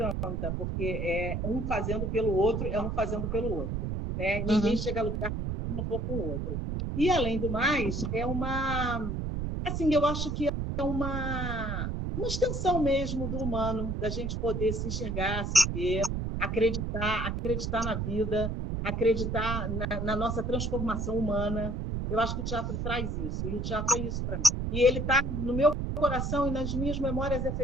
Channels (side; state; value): right; noise; rumble, 2 dB below the sound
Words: porque é um fazendo pelo outro, é um fazendo pelo outro. Né? Ninguém chega a lugar se não for com o outro. E, além do mais, assim, eu acho que é uma extensão mesmo do humano, da gente poder se enxergar, se ver, acreditar na vida, acreditar na nossa transformação humana. Eu acho que o teatro traz isso, e o teatro é isso para mim. E ele está no meu coração e nas minhas memórias